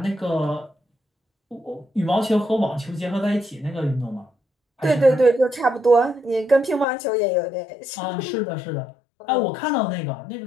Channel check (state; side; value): drops out; right; at 6.9 s